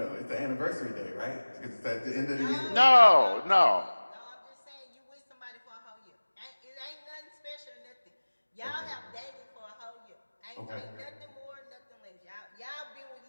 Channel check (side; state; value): both; inverted; correlation -1.00